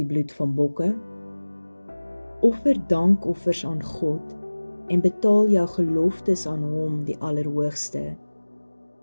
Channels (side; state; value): both; inverted; correlation -1.00